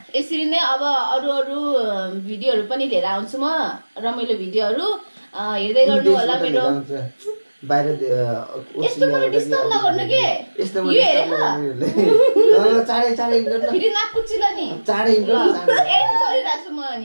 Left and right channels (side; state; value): both; inverted; correlation -1.00